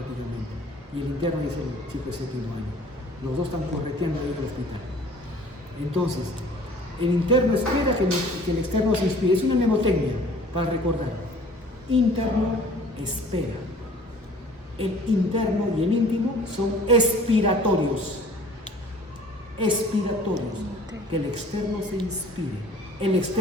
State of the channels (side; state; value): both; normal; correlation 0.49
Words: Y el interno es el chico de séptimo año. Los dos están correteando ahí en el hospital. Entonces, el interno espera que el externo se inspire. Es una mnemotecnia para recordar. Interno espera. El interno y el íntimo son expiratorios. Expiratorios. Que el externo se inspire. El